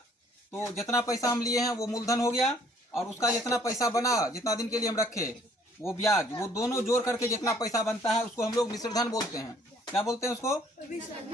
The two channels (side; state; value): both; normal; correlation 0.60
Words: तो जितना पैसा हम लिए हैं वो मूलधन हो गया और उसका जितना पैसा बना, जितना दिन के लिए हम रखे वो ब्याज, वो दोनों जोड़ करके जितना पैसा बनता है उसको हम लोग मिश्र धन बोलते हैं। क्या बोलते हैं उसको?